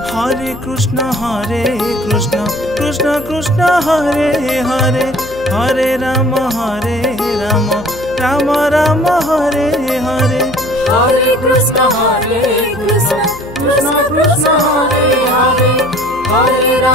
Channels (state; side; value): noise; left; hum, 19 dB below the sound